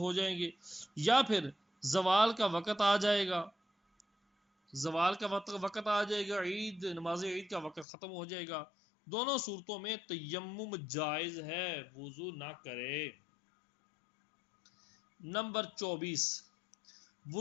جائیں گے، یا پھر زوال کا وقت آ جائے گا، عید نماز عید کا وقت ختم ہو جائے گا، دونوں صورتوں میں تیمم جائز ہے، وضو نہ کرے۔ نمبر 24،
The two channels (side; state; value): right; drops out; at 7.9 s